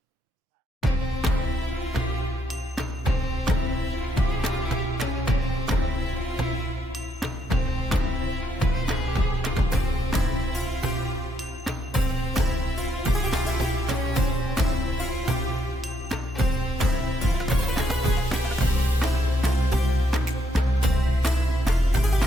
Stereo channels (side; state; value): both; normal; correlation 0.74